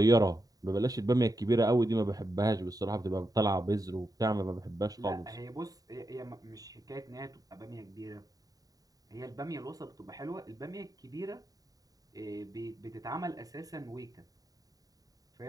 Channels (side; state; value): left; late; 0.18 ms